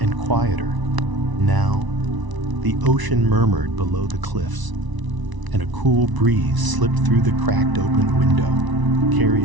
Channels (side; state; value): left; late; 1.0 ms